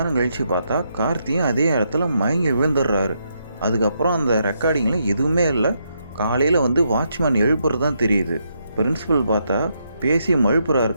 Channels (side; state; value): both; inverted; correlation -0.79